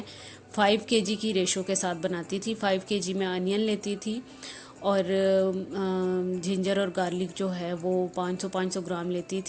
5 केजी की रेशो के साथ बनाती थी। 5 केजी में अनियन लेती थी और जिंजर और गार्लिक जो है वो 500 ग्राम लेती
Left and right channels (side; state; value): both; identical; correlation 1.00